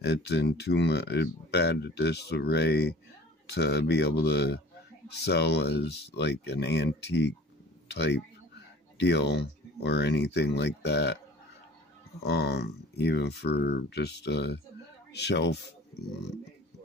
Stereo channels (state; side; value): normal; both; correlation 0.46